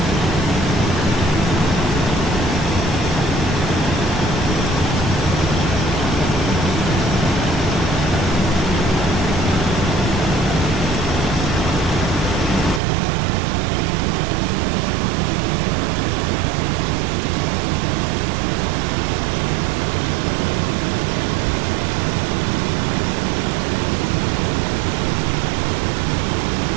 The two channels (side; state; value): left; drops out; at 12.8 s